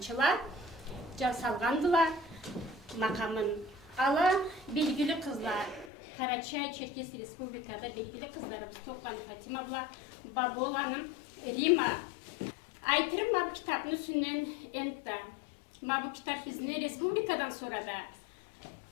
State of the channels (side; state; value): right; drops out; at 5.9 s